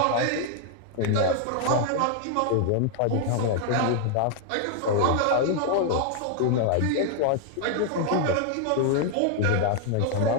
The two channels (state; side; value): different; both; correlation 0.00